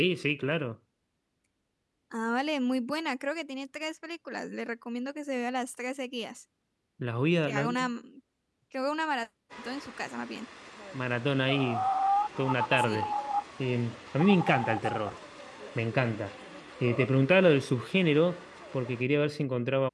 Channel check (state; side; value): identical; both; correlation 1.00